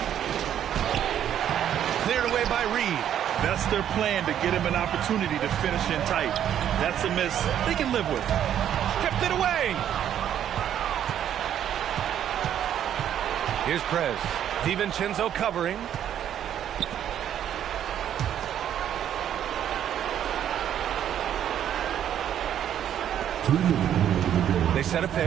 Cleared away by Reed. That's their plan, to get him an opportunity to finish in tight. That's a miss they can live with. Stripped it away. Here's Prez. DiVincenzo covering. They set a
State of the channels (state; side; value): quieter; left; 10.2 dB